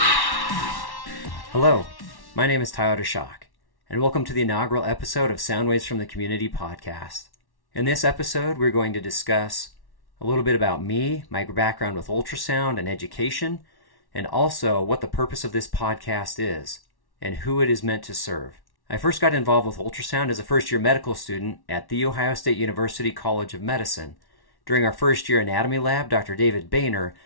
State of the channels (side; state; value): right; late; 1.1 ms